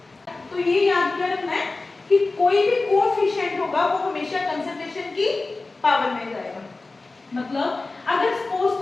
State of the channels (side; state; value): right; quieter; 3.5 dB